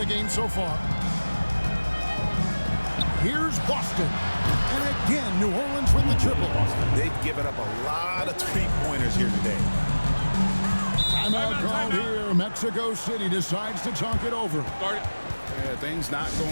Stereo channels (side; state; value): both; inverted; correlation -1.00